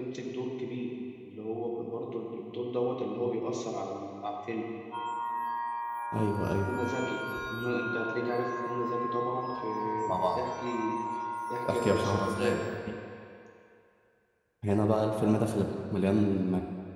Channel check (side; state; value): both; identical; correlation 1.00